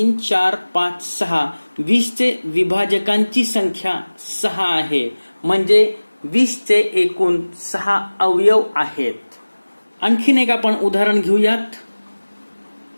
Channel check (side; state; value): both; inverted; correlation -1.00